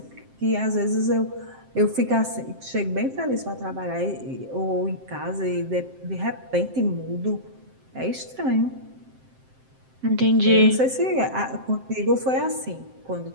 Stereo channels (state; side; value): late; left; 7.7 ms